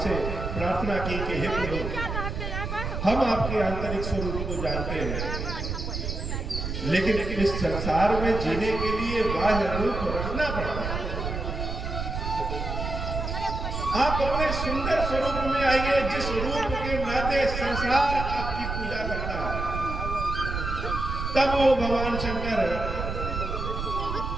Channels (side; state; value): right; noise; rumble, 4 dB below the sound